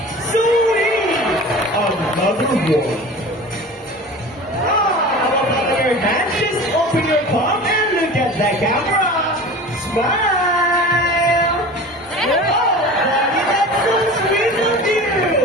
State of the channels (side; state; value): both; normal; correlation 0.36